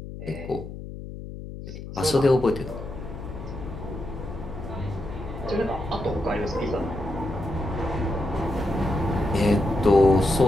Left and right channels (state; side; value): noise; left; hum, 11 dB below the sound